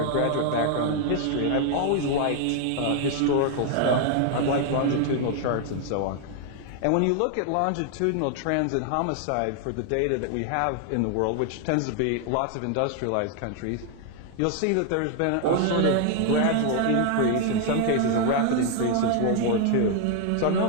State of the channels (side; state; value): both; different; correlation 0.00